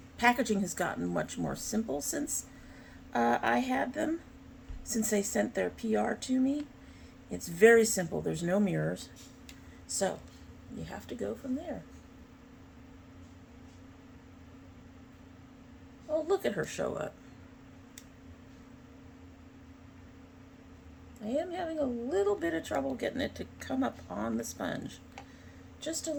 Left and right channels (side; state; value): both; identical; correlation 1.00